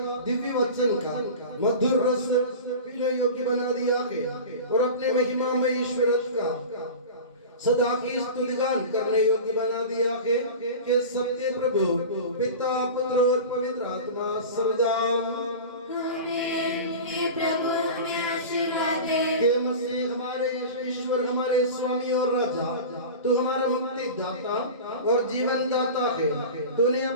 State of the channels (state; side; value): inverted; both; correlation -0.32